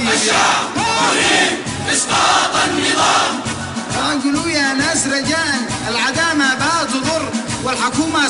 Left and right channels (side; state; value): both; identical; correlation 1.00